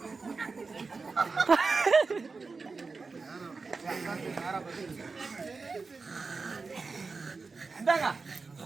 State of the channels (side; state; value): left; quieter; 4.3 dB